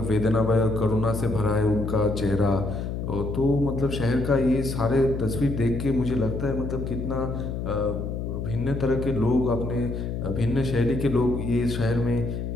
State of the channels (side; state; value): left; noise; hum, 4 dB below the sound